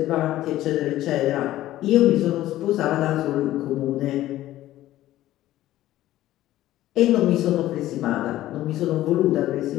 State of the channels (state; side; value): quieter; right; 14.6 dB